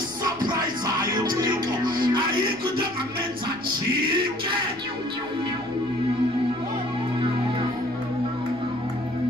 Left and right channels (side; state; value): left; noise; rumble, 28 dB below the sound